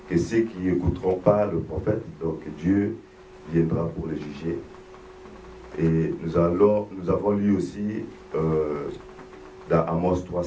que ceux qui n'écouteront pas le prophète, donc Dieu viendra pour les juger. Et nous avons lu aussi dans Amos 3,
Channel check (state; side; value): identical; both; correlation 1.00